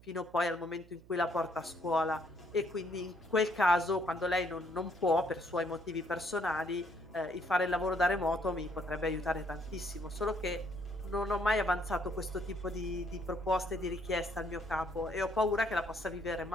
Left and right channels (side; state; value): right; noise; hum, 23 dB below the sound